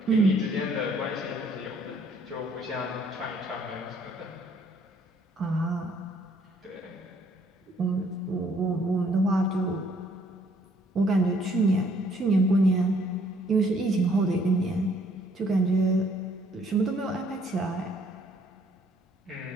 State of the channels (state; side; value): normal; both; correlation 0.64